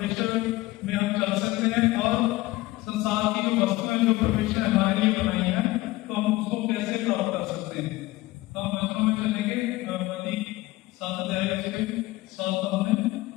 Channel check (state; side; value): quieter; right; 18.8 dB